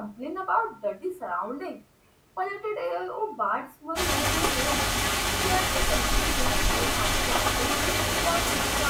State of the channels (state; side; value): identical; both; correlation 1.00